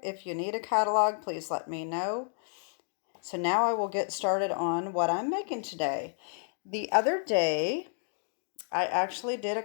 If you need a catalog, please let me know. So now I will get started on what I'm making today. The other day, I actually did a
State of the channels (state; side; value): silent; right; 57 dB below the other